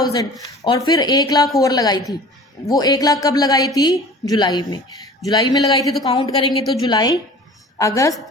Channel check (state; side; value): normal; both; correlation 0.43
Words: और फिर 1 लाख और लगाई थी। वो 1 लाख कब लगाई थी, जुलाई में। जुलाई में लगाई थी तो काउंट करेंगे तो जुलाई, अगस्त,